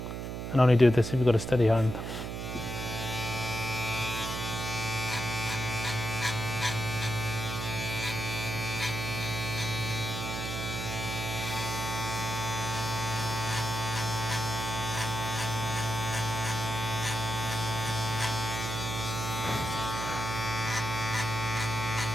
And only do this if you've got a steady hand.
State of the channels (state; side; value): noise; right; hum, 5 dB below the sound